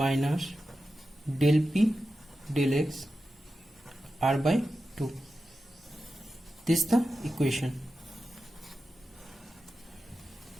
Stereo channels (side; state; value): both; normal; correlation 0.92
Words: del p del x r by 2. This is the equation.